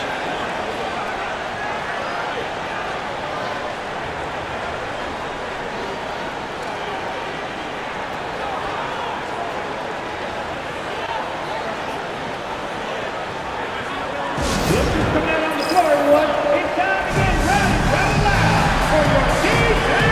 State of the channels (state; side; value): identical; both; correlation 1.00